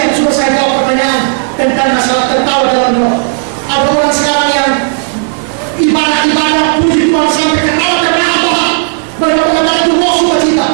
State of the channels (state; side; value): silent; left; digital silence